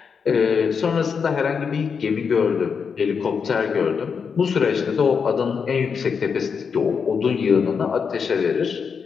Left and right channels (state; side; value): quieter; right; 6.1 dB